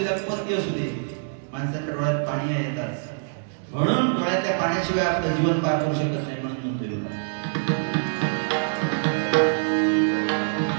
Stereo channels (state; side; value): silent; left; digital silence